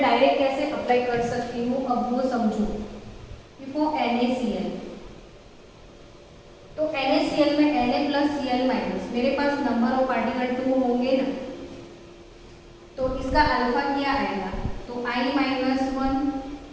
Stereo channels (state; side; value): identical; both; correlation 1.00